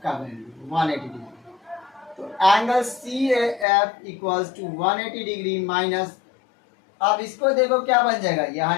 का वैल्यू 180 डिग्री। तो angle C A F equals to 180 degree minus, अब इसको देखो क्या बन जाएगा, ये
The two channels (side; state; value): right; drops out; at 3.7 s